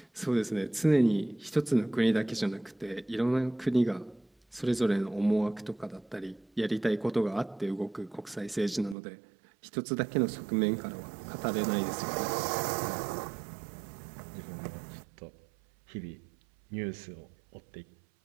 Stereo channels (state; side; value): drops out; left; at 9.0 s